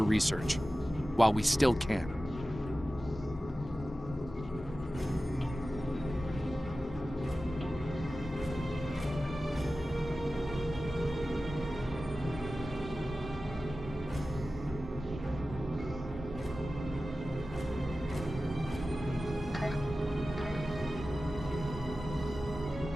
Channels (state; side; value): normal; both; correlation 0.95